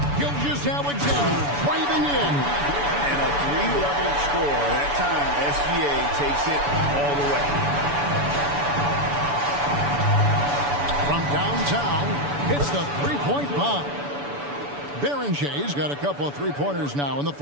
Gilgeous-Alexander driving in. And a 3-level score. That time, SGA takes it all the way. From downtown, hits the three-point bomb. Berenger's got a couple of three-pointers now in the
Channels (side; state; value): left; late; 7.0 ms